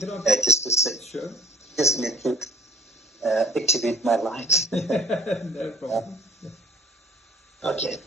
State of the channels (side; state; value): both; normal; correlation 0.53